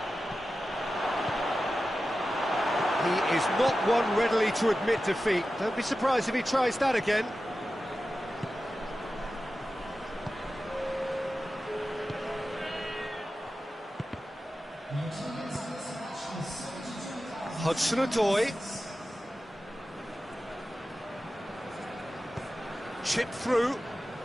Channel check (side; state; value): both; normal; correlation 0.93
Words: He is not one readily to admit defeat. Don't be surprised if he tries that again. Hudson-Odoi. Chip through.